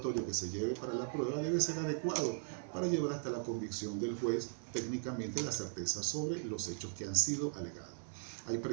que se lleve para la prueba debe ser adecuado para llevar hasta la convicción del juez técnicamente la certeza sobre los hechos que han sido alegados. Hay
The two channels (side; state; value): left; silent; 52 dB below the other